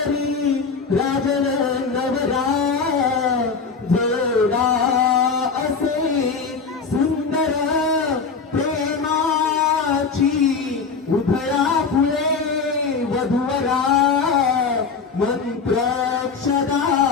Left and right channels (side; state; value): right; quieter; 5.1 dB